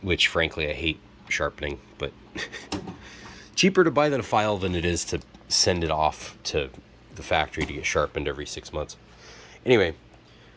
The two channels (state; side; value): identical; both; correlation 1.00